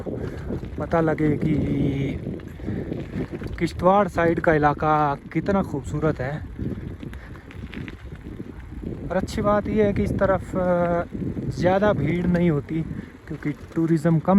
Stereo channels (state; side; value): identical; both; correlation 1.00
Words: पता लगे कि किश्तवाड़ साइड का इलाका कितना खूबसूरत है। और अच्छी बात यह है कि इस तरफ ज़्यादा भीड़ नहीं होती क्योंकि टूरिज़्म